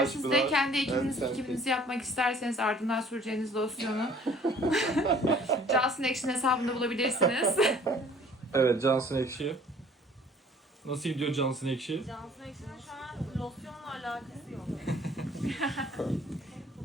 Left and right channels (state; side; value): normal; both; correlation 0.54